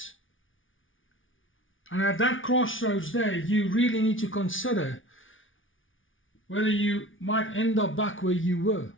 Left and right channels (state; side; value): late; right; 0.57 ms